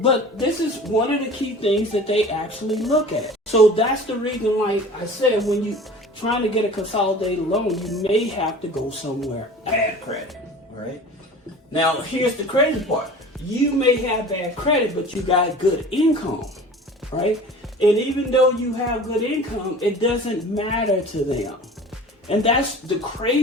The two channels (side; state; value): both; normal; correlation 0.41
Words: this is one of the key things that they actually look at. So that's the reason, like I said, when you trying to get a consolidated loan, you may have to go somewhere bad credit, right? Now, here's the crazy part. You may have bad credit, but you got good income, right? And even though you have good income, it doesn't matter to them. And that's the